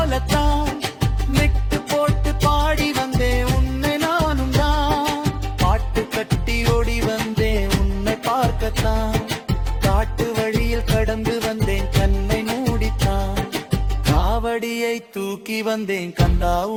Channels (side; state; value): both; identical; correlation 1.00